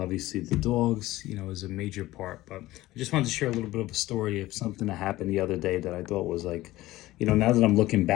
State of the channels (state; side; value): quieter; right; 17.1 dB